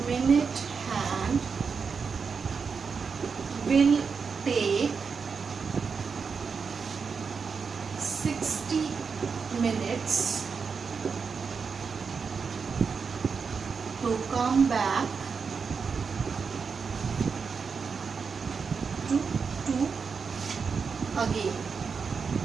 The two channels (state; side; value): quieter; left; 5.6 dB